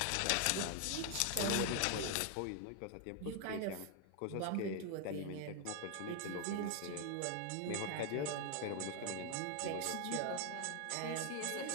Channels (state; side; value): different; both; correlation 0.00